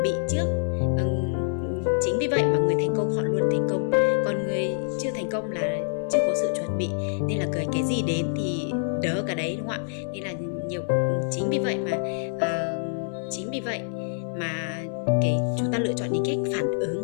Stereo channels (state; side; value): silent; right; digital silence